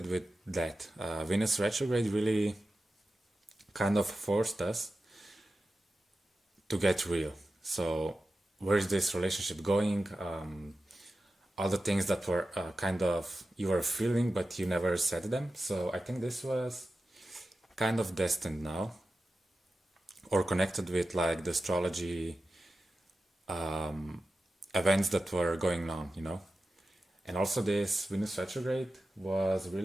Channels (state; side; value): normal; both; correlation 0.93